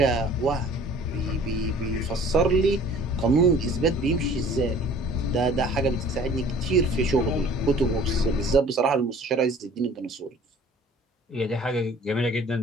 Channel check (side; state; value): both; normal; correlation 0.50